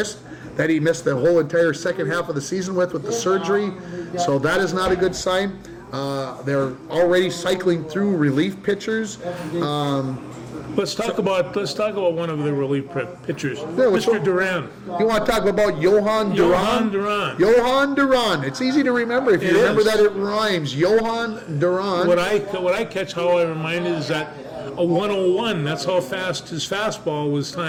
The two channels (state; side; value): identical; both; correlation 1.00